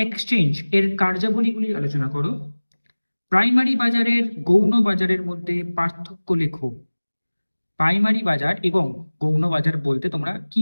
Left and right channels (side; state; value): both; inverted; correlation -1.00